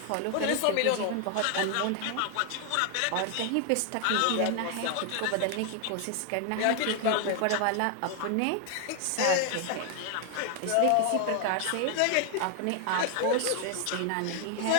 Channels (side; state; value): both; different; correlation 0.00